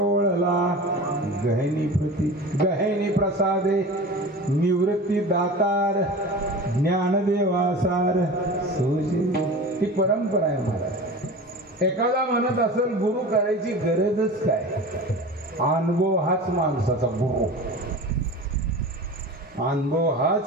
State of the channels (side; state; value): both; normal; correlation 0.34